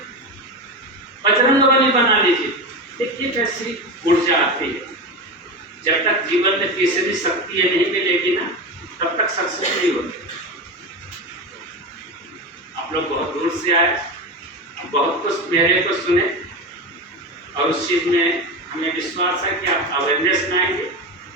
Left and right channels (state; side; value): normal; both; correlation 0.21